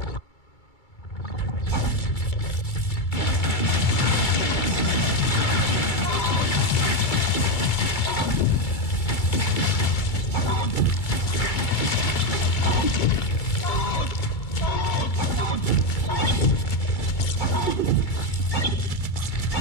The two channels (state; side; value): late; right; 2.3 ms